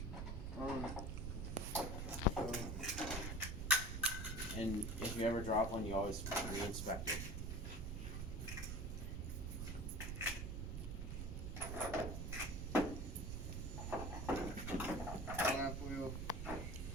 So And if you ever drop one, you always re-inspect it. flap wheel,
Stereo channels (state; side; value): noise; right; rumble, 3 dB below the sound